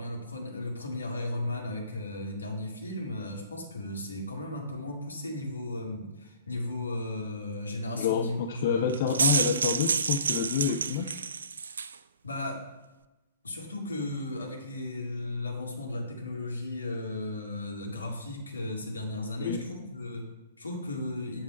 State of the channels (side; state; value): both; inverted; correlation -0.52